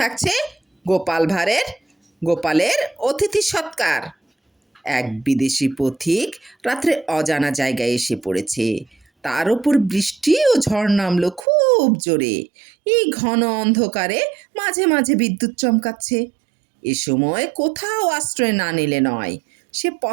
গোপালের অতিথি সৎকার। এক বিদেশি পথিক রাত্রে অজানা জায়গায় এসে পড়েছে। তার ওপর বৃষ্টি ও ঝড় নামলো খুব জোরে। এই ঘন অন্ধকারে মাঝে মাঝে বিদ্যুৎ চমকাচ্ছে। এ সময় কোথাও আশ্রয় না নিলে নয়। সে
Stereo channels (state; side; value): drops out; left; at 11.5 s